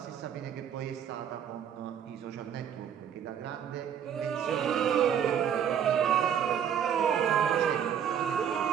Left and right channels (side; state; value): left; quieter; 8.7 dB